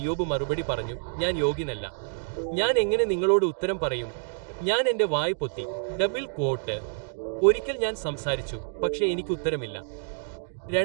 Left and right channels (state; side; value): silent; left; digital silence